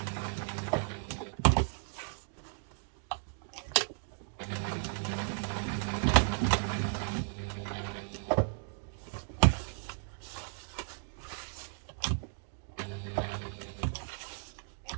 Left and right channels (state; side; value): silent; left; digital silence